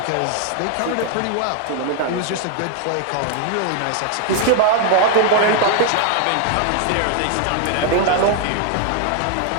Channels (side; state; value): both; different; correlation 0.00